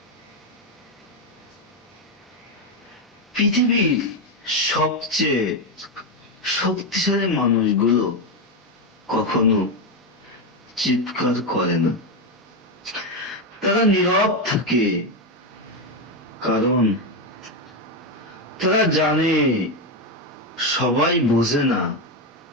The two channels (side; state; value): both; normal; correlation 0.09